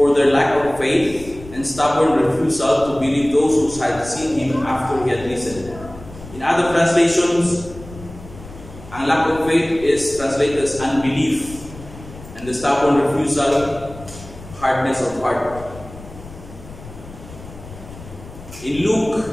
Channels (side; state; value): left; noise; rumble, 16 dB below the sound